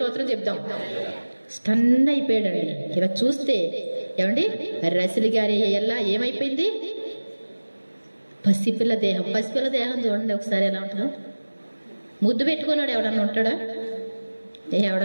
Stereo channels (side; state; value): both; inverted; correlation -1.00